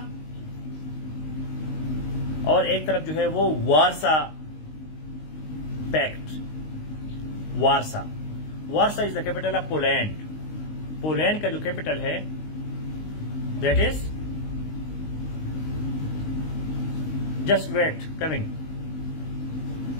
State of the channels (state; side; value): late; right; 19 ms